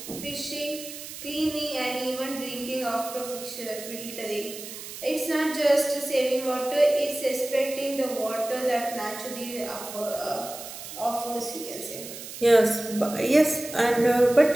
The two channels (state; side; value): noise; right; hiss, 11 dB below the sound